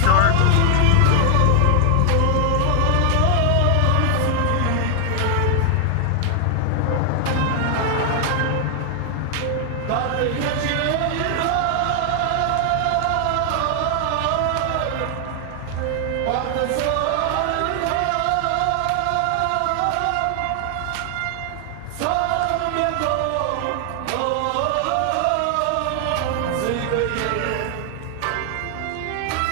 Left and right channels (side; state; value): both; different; correlation 0.00